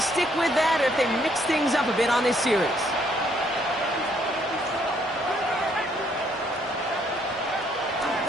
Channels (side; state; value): both; normal; correlation 0.69